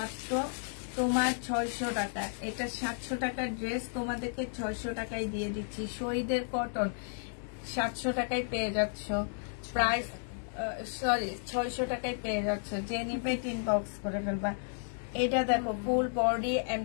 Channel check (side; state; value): right; silent; 56 dB below the other